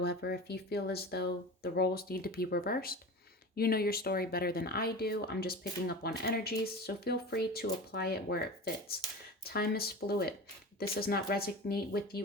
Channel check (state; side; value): normal; both; correlation 0.32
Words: if you feel as though the roles need to be reversed, you know your story better than I do. I'm just picking up on energies, so feel free to apply it where it fits. Time is fluid. If this does not resonate with